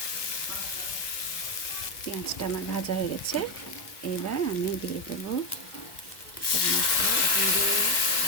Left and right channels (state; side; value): late; right; 1.1 ms